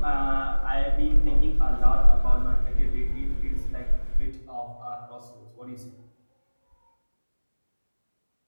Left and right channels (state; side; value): inverted; both; correlation -1.00